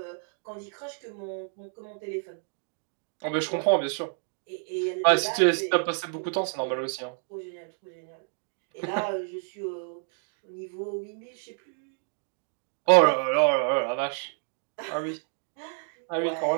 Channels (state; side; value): silent; left; 58 dB below the other